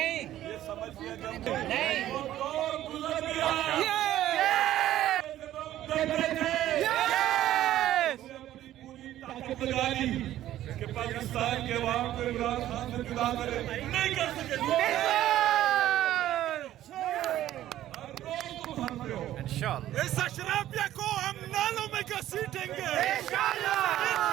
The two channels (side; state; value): left; quieter; 13.2 dB